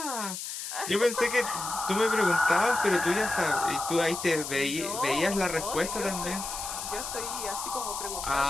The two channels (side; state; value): left; noise; hiss, 6 dB below the sound